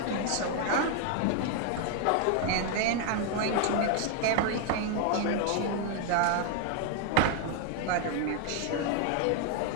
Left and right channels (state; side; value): different; both; correlation 0.00